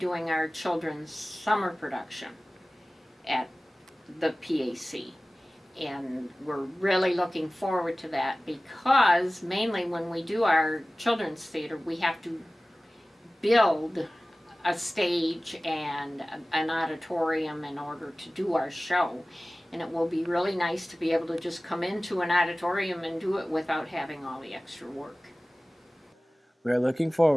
our children's summer production at the PAC, and we're really looking forward to that, because mainly when we do our children's theater, we have to build a stage and an auditorium in order to do our show, and it will be really nice to be able to just come into an auditorium and do it without having all the extra work. We are looking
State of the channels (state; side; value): normal; both; correlation 0.98